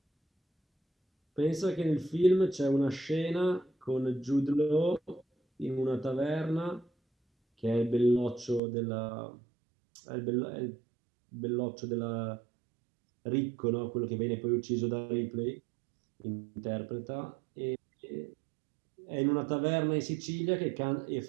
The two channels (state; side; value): drops out; left; at 8.6 s